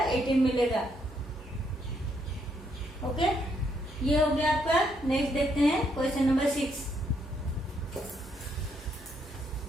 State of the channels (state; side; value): normal; both; correlation 0.74